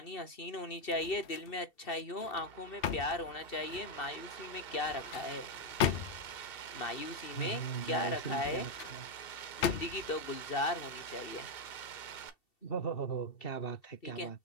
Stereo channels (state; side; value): late; right; 2.7 ms